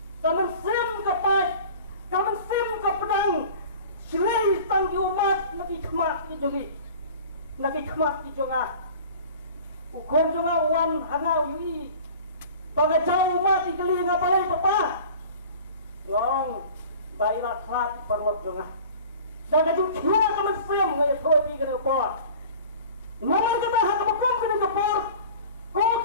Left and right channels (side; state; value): both; inverted; correlation -0.42